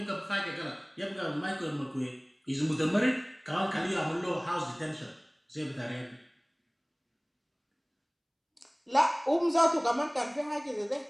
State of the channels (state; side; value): identical; both; correlation 1.00